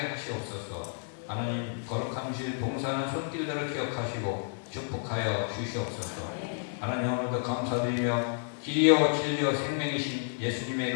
하시옵소서. 하나님 거룩한 주일 봉사하는 손길들을 기억하시고 축복하여 주시옵소서. 하나님 오늘도 감사드리며 길이요 진리요 생명이신 예수님의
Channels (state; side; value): silent; right; digital silence